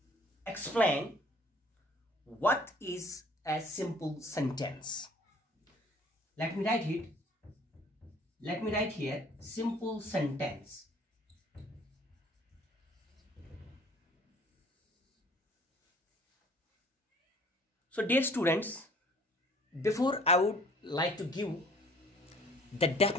explain what is a simple sentence. Let me write it. Let me write here simple sentence. So dear students, before I would like to give the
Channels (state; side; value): normal; both; correlation 0.54